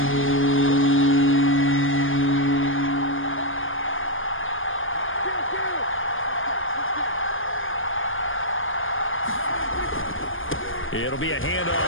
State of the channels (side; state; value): right; late; 0.58 ms